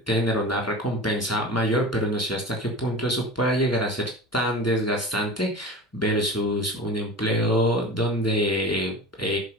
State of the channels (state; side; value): normal; both; correlation 0.33